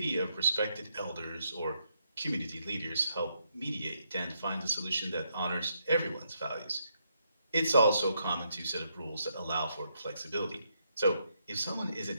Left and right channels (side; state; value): both; inverted; correlation -0.77